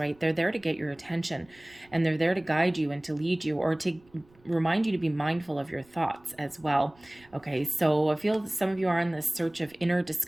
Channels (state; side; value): noise; right; rumble, 30 dB below the sound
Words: they're there to get your attention, and they're there to guide you and to lead you, or to remind you to be mindful of your thoughts as well. Okay. So I feel that some of you are on this search of inner